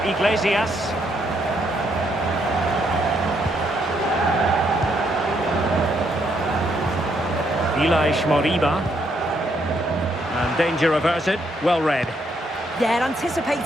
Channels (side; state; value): both; normal; correlation 0.74